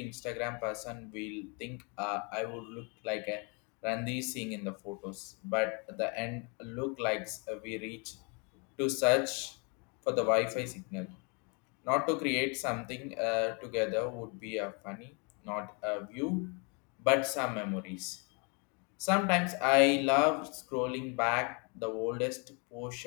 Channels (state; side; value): quieter; right; 34.1 dB